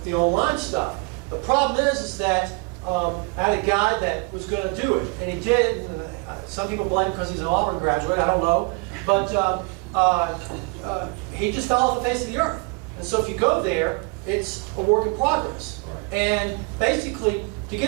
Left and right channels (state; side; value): quieter; left; 29.1 dB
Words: the online stuff. The problem is that I had a guy that was going to do it, and he did. And, some people blame him because he's an Auburn graduate. I don't know, but he just fell off the face of the earth. And so if you go there, it's a work in progress. And basically, to